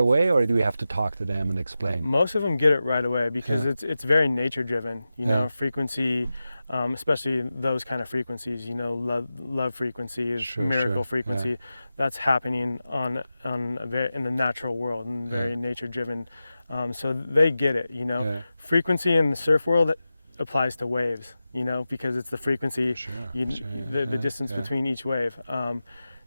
or do we have to talk to them and explain? Most of them get it right away, because it's very nature driven, you know, frequency, especially those kind of frequencies, you know, love frequencies, miracle frequency, that's happening in the natural world, and very nature driven. So they get it, you know. Frequency in the surf world applies to waves, you know, because it's the frequency, the distance between each wave.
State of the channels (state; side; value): inverted; both; correlation -0.93